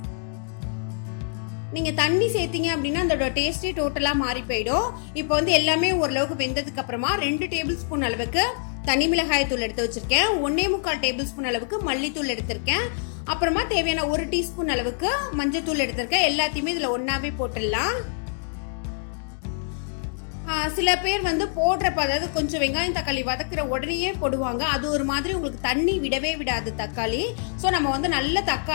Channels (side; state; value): right; silent; digital silence